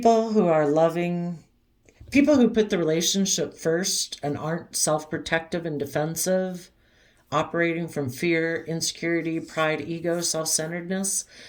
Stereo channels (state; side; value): identical; both; correlation 1.00